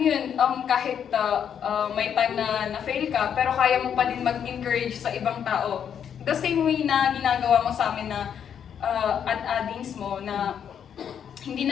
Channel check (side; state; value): right; quieter; 8.4 dB